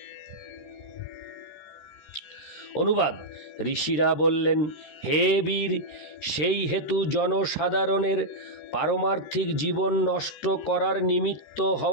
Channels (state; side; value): late; right; 13 ms